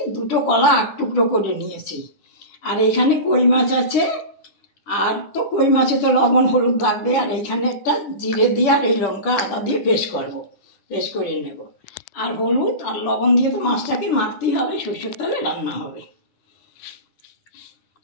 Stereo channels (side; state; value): right; late; 10 ms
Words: 2টো কলা 8 টুকরো করে নিয়েছি, আর এখানে কই মাছ আছে। আর তো কই মাছে তো লবণ হলুদ লাগবে। আর এখানে একটা জিরে দিয়ে আর এই লঙ্কা আদা দিয়ে পেস্ট করে নেব। আর হলুদ আর লবণ দিয়ে তো মাছটাকে মাখতেই হবে, সরষের তেলে রান্না হবে।